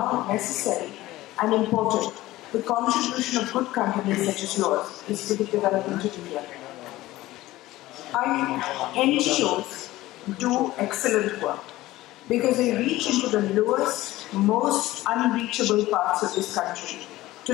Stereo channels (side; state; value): right; quieter; 17.1 dB